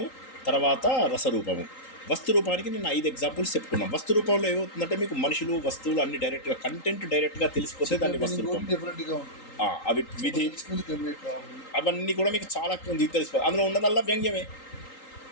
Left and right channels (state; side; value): late; right; 3.8 ms